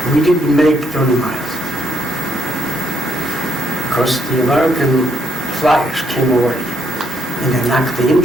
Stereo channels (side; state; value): both; normal; correlation 0.74